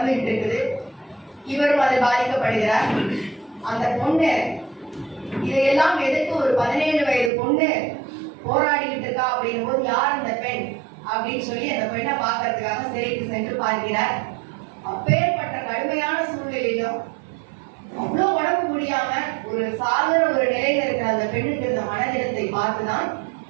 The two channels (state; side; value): drops out; left; at 7.3 s